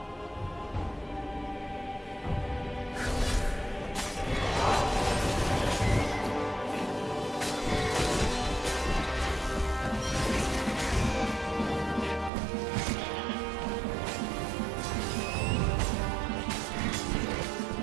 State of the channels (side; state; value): left; drops out; at 12.3 s